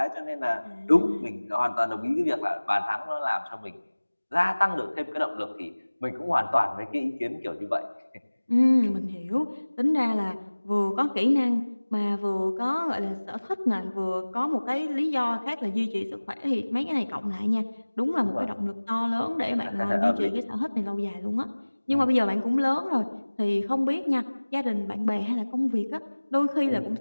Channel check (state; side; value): inverted; both; correlation -1.00